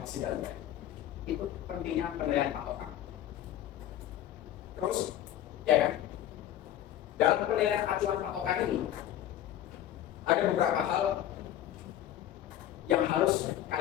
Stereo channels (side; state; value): right; quieter; 12.0 dB